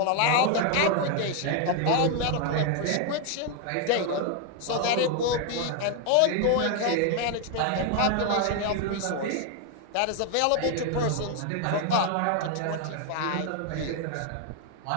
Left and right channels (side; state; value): both; different; correlation 0.01